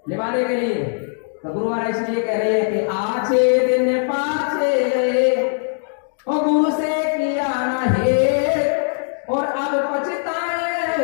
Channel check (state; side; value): silent; right; digital silence